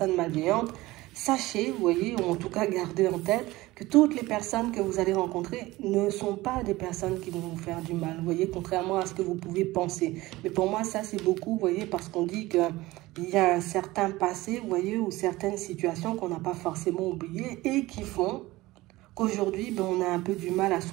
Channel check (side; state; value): left; quieter; 19.1 dB